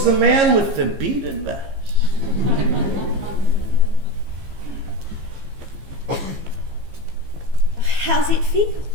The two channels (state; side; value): late; left; 15 ms